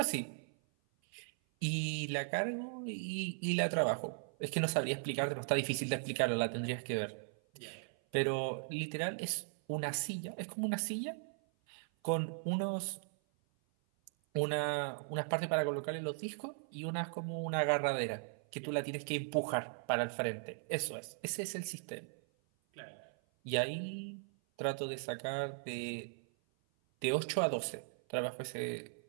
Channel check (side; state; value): left; silent; 53 dB below the other